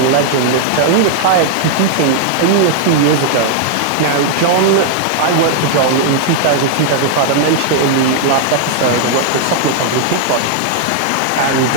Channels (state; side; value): different; both; correlation -0.01